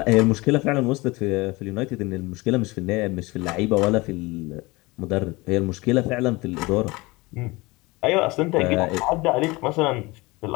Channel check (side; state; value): right; quieter; 23.0 dB